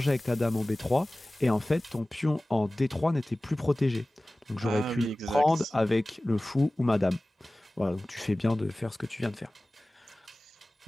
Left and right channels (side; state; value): both; normal; correlation 0.98